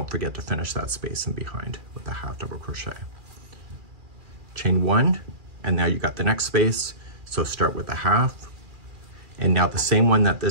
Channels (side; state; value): left; late; 2.4 ms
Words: forget to finish that space in behind with the half double crochet. Chain 1, and now you got the next space, so start with the half, and now the same one that